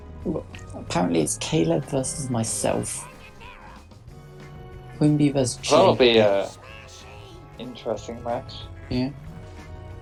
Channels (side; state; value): both; identical; correlation 1.00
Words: apparently it's Caleb versus myself, Quimby versus Jake. That'll be a interesting match. Yeah.